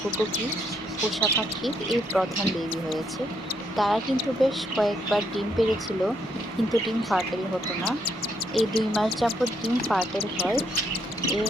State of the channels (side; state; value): both; normal; correlation 0.74